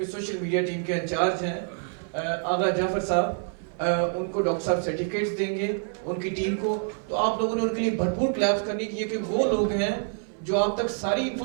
سوشل میڈیا ٹیم کے انچارج ہیں آغا جعفر صاحب, ان کو ڈاکٹر صاحب سرٹیفکیٹس دیں گے ان کی ٹیم کو. تو آپ لوگوں نے ان کے لیے بھرپور کلیپس کرنی ہے کہ وہ لوگ ہیں جو آپ تک ساری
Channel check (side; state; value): left; silent; 60 dB below the other